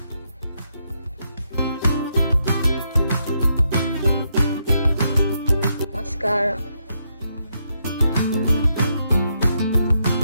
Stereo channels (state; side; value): inverted; both; correlation -0.80